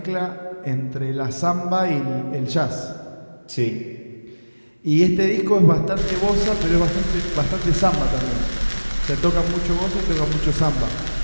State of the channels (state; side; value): inverted; both; correlation -1.00